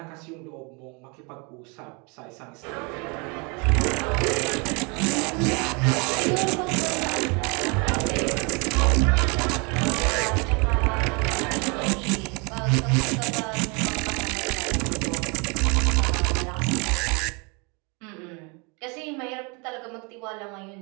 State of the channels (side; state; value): left; quieter; 31.3 dB